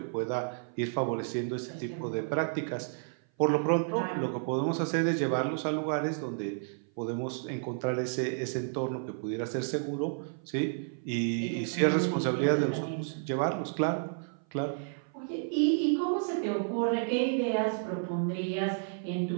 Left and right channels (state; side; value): silent; left; 55 dB below the other